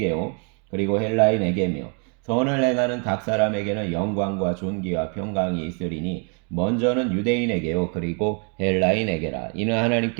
그리고 헬라인에게며 선을 행하는 각 사람에게는 영광과 존귀와 평강이 있으리니 먼저는 유대인에게요 그리고 헬라인에게라. 이는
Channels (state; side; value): quieter; left; 38.1 dB